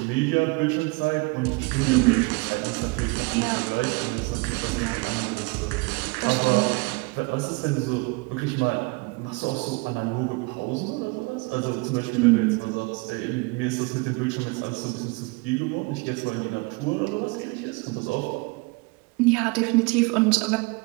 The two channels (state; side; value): quieter; left; 27.6 dB